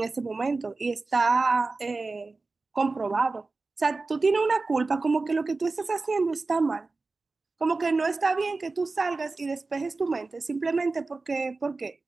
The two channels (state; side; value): quieter; left; 3.7 dB